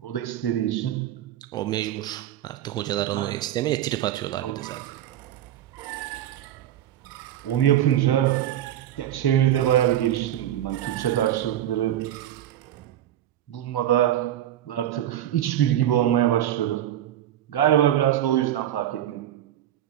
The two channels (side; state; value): left; quieter; 12.1 dB